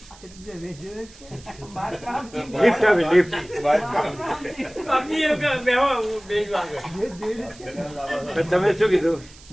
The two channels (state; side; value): noise; right; hiss, 22 dB below the sound